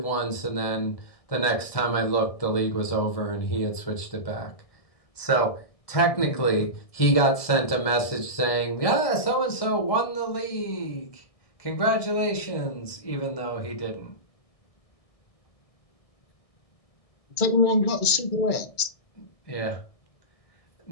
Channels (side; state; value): right; late; 1.6 ms